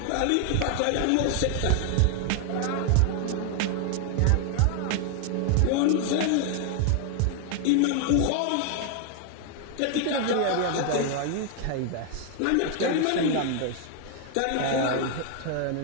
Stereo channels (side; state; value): both; different; correlation 0.00